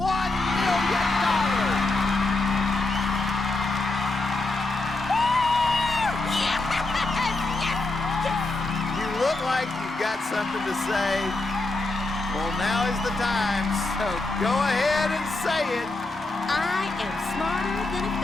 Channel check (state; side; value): quieter; right; 3.1 dB